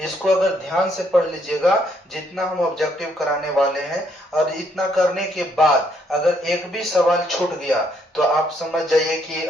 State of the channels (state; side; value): normal; both; correlation 0.71